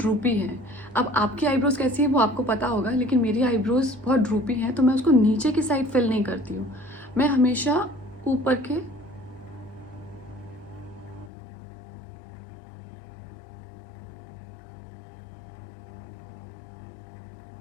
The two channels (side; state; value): right; drops out; at 11.3 s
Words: हैं। अब आपकी आईब्रोज कैसी है वो आपको पता होगा, लेकिन मेरी आईब्रोज बहुत ड्रूपी हैं, तो मैं उसको नीचे की साइड फिल नहीं करती हूँ, मैं हमेशा ऊपर के, ये